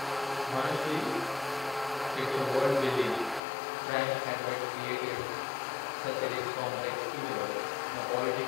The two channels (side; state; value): right; drops out; at 3.4 s